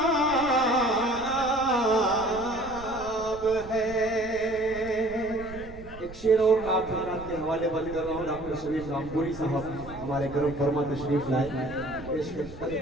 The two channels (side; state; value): right; noise; rumble, 16 dB below the sound